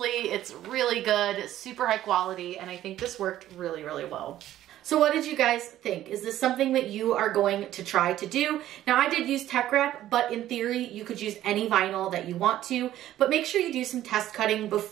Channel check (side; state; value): left; quieter; 13.1 dB